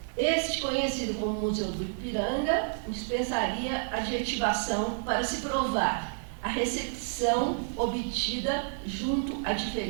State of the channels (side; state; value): left; silent; 58 dB below the other